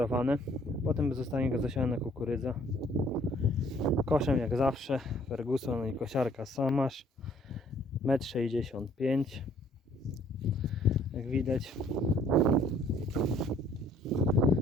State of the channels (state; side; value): normal; both; correlation 0.60